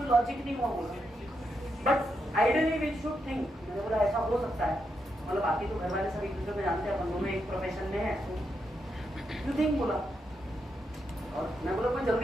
लॉजिक नहीं हुआ बोला, but ideally we should think. मैंने बोला ऐसा हो सकता है, मतलब बाकी तो घर वाले सब एक दूसरे को जानते हैं, अपन दोनों एक प्रोफेशन में है, यू थिंक बोला। और मैं बोला कोई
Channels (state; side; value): normal; both; correlation 0.83